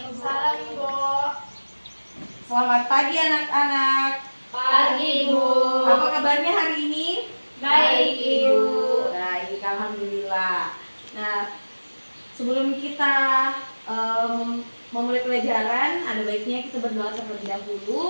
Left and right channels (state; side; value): inverted; both; correlation -1.00